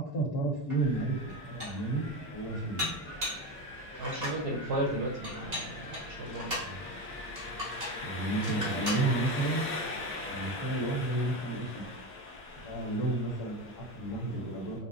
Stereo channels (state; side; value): late; left; 2.8 ms